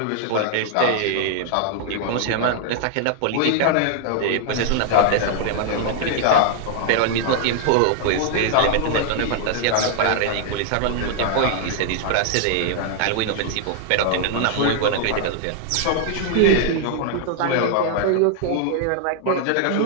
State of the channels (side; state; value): both; different; correlation -0.01